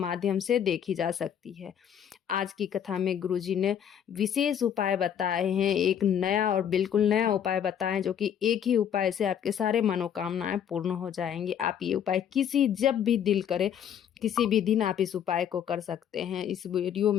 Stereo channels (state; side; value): quieter; right; 9.1 dB